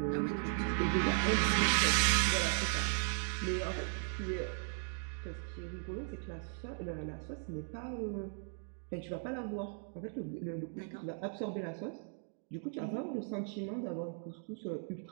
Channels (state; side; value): silent; left; 53 dB below the other